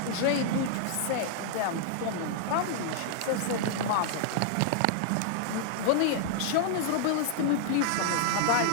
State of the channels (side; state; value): both; different; correlation -0.01